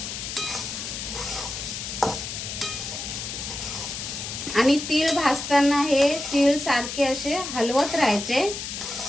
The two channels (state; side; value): noise; left; hiss, 6 dB below the sound